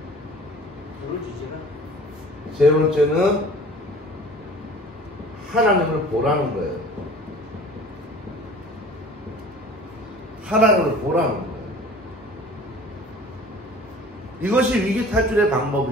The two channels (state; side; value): normal; both; correlation 0.46